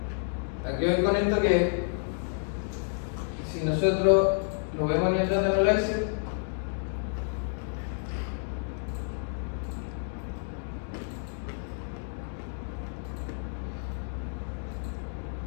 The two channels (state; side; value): silent; right; digital silence